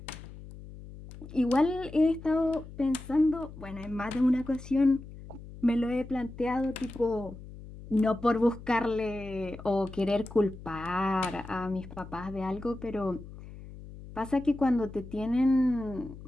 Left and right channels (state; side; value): noise; left; hum, 15 dB below the sound